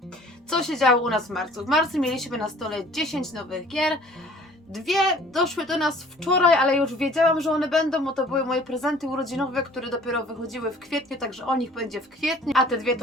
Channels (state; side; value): normal; both; correlation 0.51